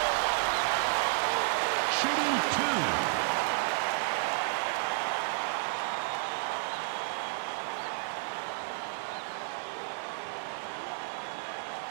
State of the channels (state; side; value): silent; left; digital silence